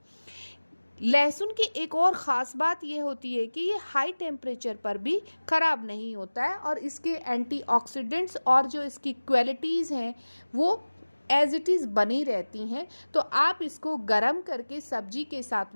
लहसुन की एक और ख़ास बात ये होती है कि ये हाई टेम्परेचर पर भी ख़राब नहीं होता है और इसके एंटीऑक्सीडेंट्स और जो इसकी क्वालिटीज़ हैं वो एज इट इज़ बनी रहती हैं। तो आप इसको गरम करके सब्जी के साथ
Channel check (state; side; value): inverted; both; correlation -1.00